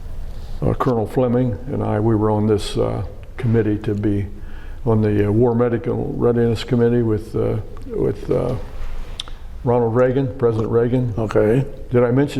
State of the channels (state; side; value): identical; both; correlation 1.00